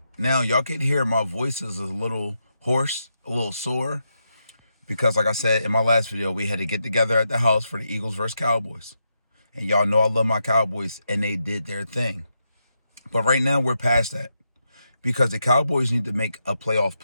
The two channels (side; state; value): both; inverted; correlation -0.84